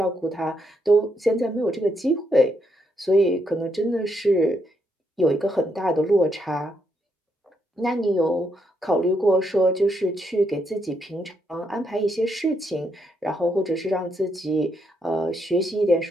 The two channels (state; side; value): normal; both; correlation 0.78